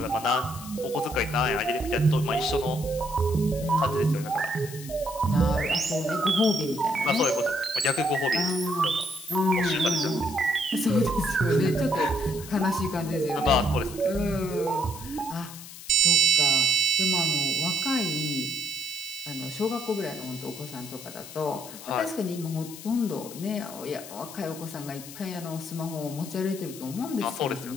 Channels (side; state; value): left; noise; hiss, 14 dB below the sound